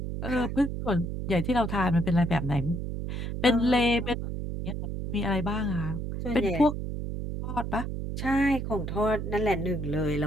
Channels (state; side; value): noise; right; hum, 4 dB below the sound